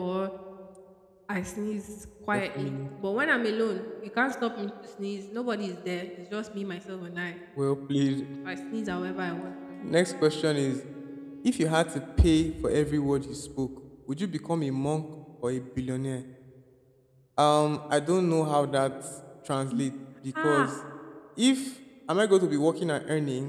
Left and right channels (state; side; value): identical; both; correlation 1.00